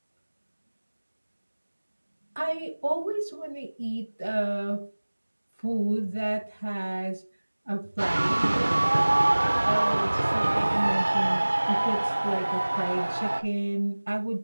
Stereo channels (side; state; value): both; inverted; correlation -1.00